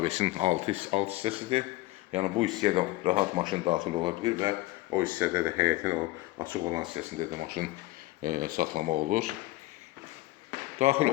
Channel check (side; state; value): right; quieter; 19.2 dB